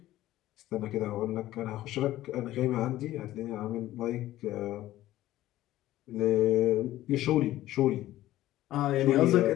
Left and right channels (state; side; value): quieter; right; 14.8 dB